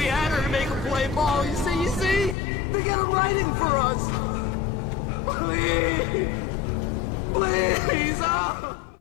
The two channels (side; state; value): right; drops out; at 2.4 s